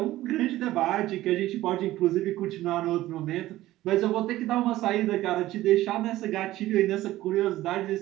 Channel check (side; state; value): left; quieter; 15.7 dB